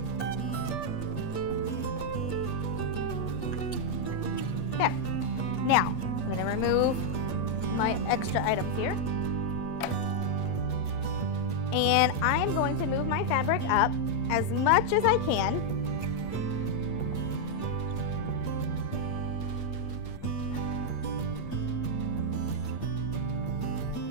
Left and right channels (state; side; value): late; right; 8.4 ms